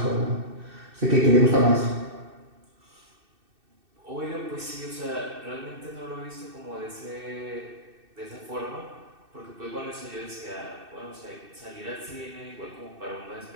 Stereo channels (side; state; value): left; late; 2.6 ms